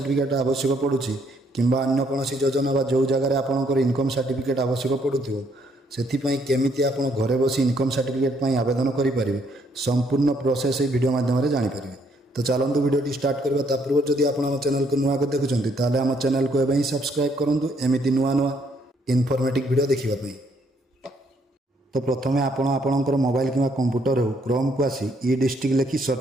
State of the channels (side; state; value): both; normal; correlation 0.69